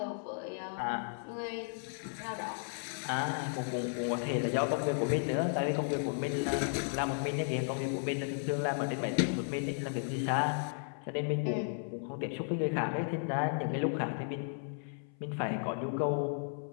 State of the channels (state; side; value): silent; right; 55 dB below the other